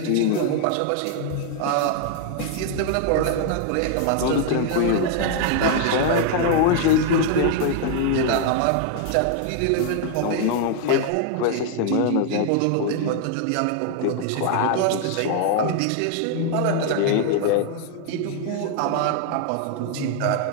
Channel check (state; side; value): different; both; correlation 0.00